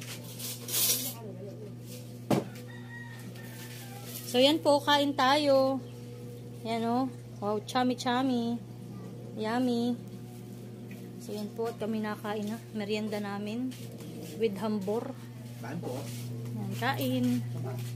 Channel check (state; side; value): identical; both; correlation 1.00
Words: So yan po, kain tayo. Yan o. Wow, chami-chami. Yummy. So yan po, at kami nakain na. Merienda namin. With hambor. Saan po? Yan, kain.